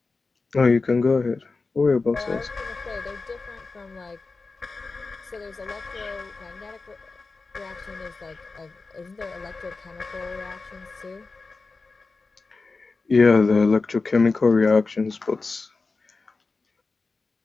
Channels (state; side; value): quieter; right; 4.0 dB